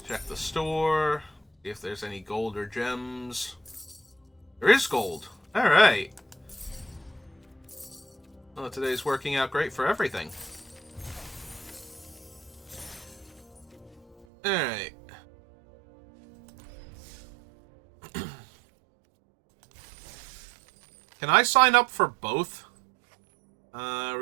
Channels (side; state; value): left; drops out; at 14.2 s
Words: Check the store, see if there's any gold or gems. There is gold. Alright. Well, today's working out great for everything. Alright. Can I sign up for both?